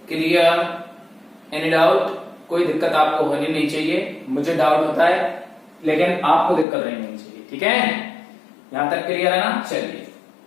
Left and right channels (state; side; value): drops out; right; at 6.7 s